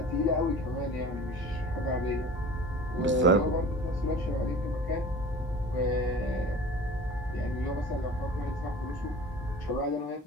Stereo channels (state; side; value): normal; both; correlation 0.41